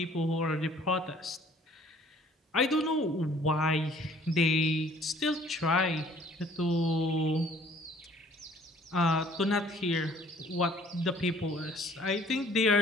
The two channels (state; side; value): normal; both; correlation 0.56